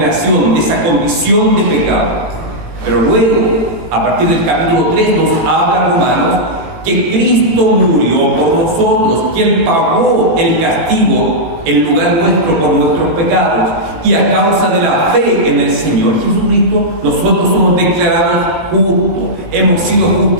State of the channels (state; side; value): late; left; 18 ms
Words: de esa condición de pecado. Pero luego, a partir del capítulo 3, nos habla Romanos que Cristo murió por nosotros, que Él pagó el castigo en lugar nuestro por nuestros pecados. Y a causa de la fe en el Señor Jesucristo, nosotros somos declarados justos. Hemos sido